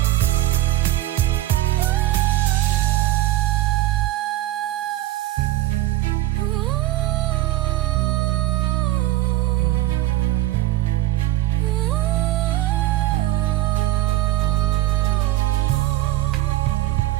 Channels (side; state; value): left; quieter; 16.5 dB